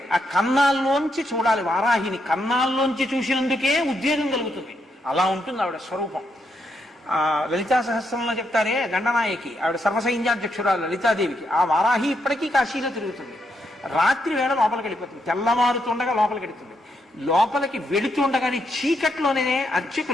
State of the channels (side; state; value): both; normal; correlation 0.79